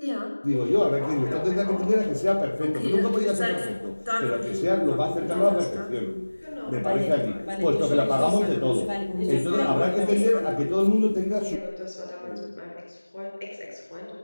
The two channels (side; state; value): both; inverted; correlation -1.00